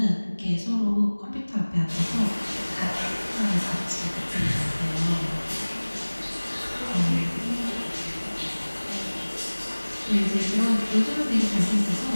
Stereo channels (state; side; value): inverted; both; correlation -1.00